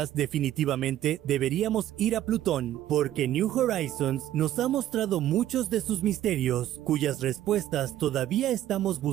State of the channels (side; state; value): left; quieter; 12.8 dB